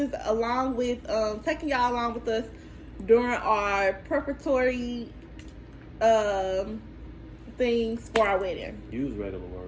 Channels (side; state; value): both; identical; correlation 1.00